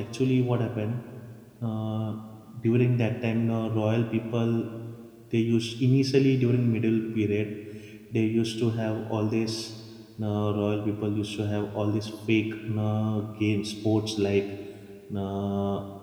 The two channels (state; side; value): identical; both; correlation 1.00